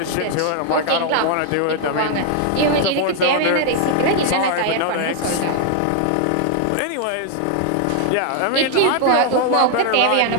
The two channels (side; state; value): both; different; correlation 0.00